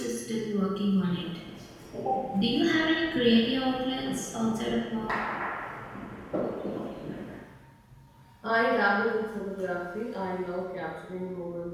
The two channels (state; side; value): identical; both; correlation 1.00